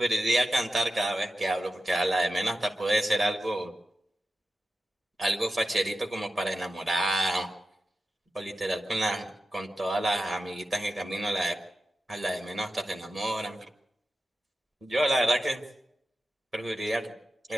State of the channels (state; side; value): normal; both; correlation 0.92